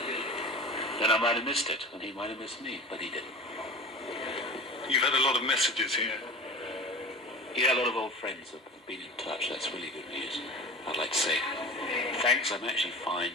Then I might have missed it, and he might have missed me, but he didn't. You've had a lot of messages here. Yeah, a lot of old friends have been in touch. That's really good news. I'd like to say thanks. I'm actually fine,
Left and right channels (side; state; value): both; normal; correlation 0.35